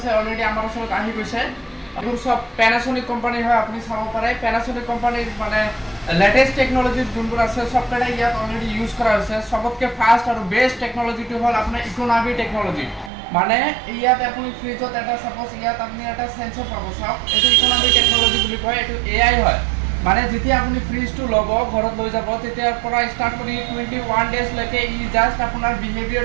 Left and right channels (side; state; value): left; drops out; at 13.1 s